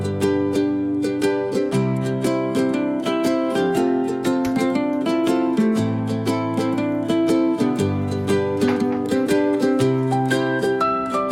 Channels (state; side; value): identical; both; correlation 1.00